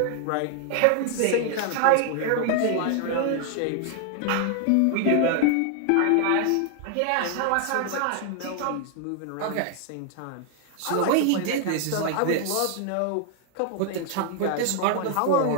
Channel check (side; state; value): both; different; correlation 0.00